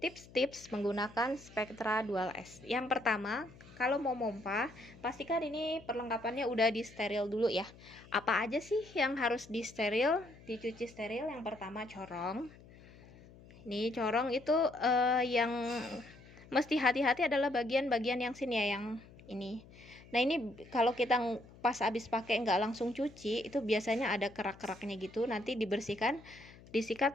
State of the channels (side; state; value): left; noise; hum, 21 dB below the sound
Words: menggunakan Spectra Dual S. Yang pertama, kalau mau pompa, pastikan ini perlengkapannya udah di steril dulu ya. Apa aja sih yang harus di steril, dicuci steril? Yang pertama corong. Ini corong itu yang mesti hati-hati adalah bagian-bagian yang sini ya, yang ini. Nah ini kalau kita pas habis pakai nggak langsung cuci, itu biasanya ada kerak-keraknya gitu. Nanti dibersihkan,